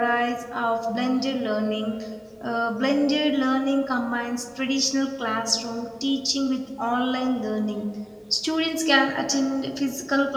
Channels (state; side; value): identical; both; correlation 1.00